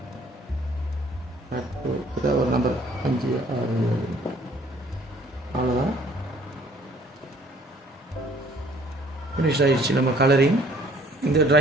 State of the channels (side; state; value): both; normal; correlation 0.57